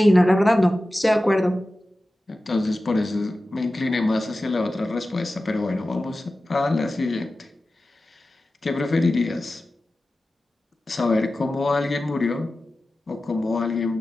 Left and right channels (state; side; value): normal; both; correlation 0.95